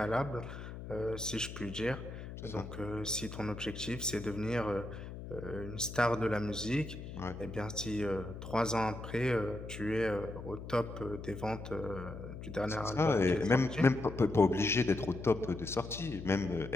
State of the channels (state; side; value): noise; left; hum, 10 dB below the sound